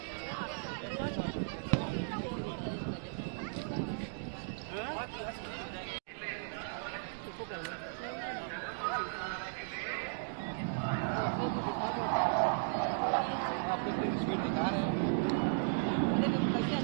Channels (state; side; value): silent; left; digital silence